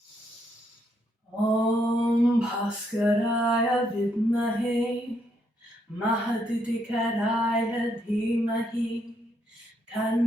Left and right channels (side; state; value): both; normal; correlation 0.75